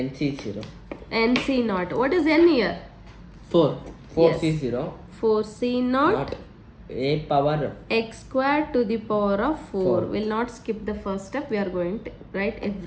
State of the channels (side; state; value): both; identical; correlation 1.00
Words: NC0. What is n here? 4. Yes. 4C0. 4C0. Not a power X square to the power of 4. 4. Will not skip the first step. We are going to write